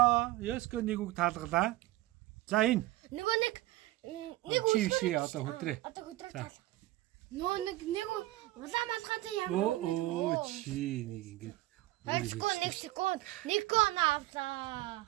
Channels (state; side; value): quieter; left; 17.5 dB